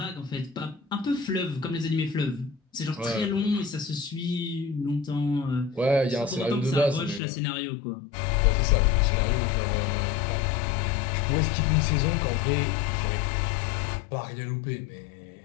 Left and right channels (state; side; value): drops out; right; at 7.2 s